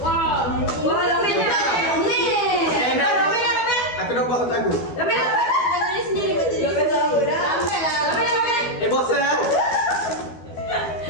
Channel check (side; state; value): right; late; 12 ms